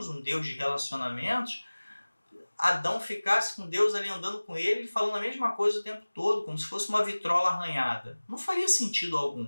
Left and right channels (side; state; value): both; inverted; correlation -1.00